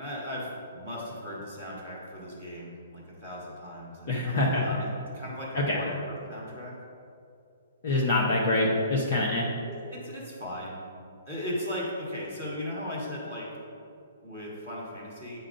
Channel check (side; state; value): both; inverted; correlation -0.39